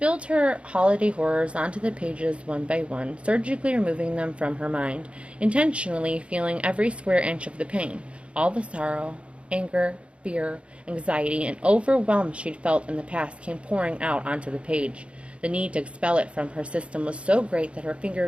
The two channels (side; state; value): left; late; 0.060 ms